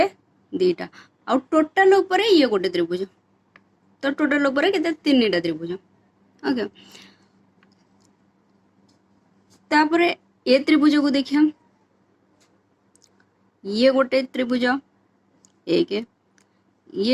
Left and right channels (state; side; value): identical; both; correlation 1.00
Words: दीटा आउ टोटल ऊपर ये गोटे त्रिभुज। तो टोटल ऊपर केते तीनटा त्रिभुज। ओके तापरे ये त्रिभुज को देखिया ये गोटे त्रिभुज एक,